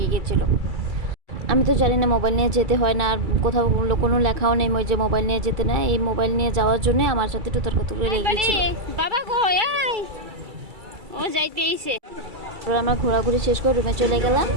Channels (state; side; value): late; left; 2.3 ms